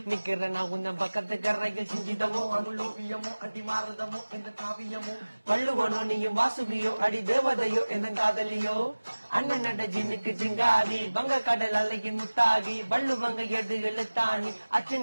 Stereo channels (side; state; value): both; inverted; correlation -1.00